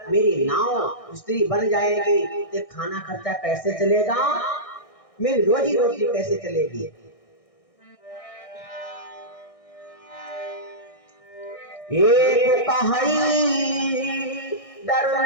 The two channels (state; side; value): late; right; 1.6 ms